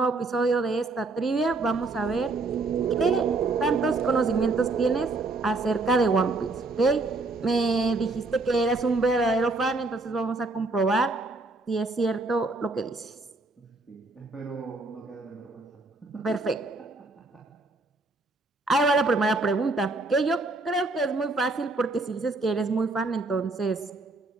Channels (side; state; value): left; quieter; 3.4 dB